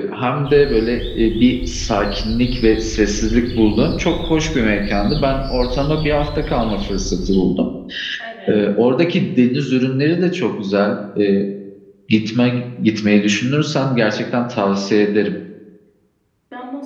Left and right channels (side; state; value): both; identical; correlation 1.00